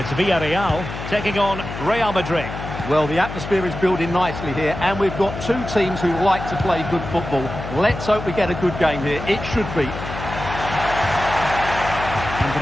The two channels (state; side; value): noise; left; hum, 8 dB below the sound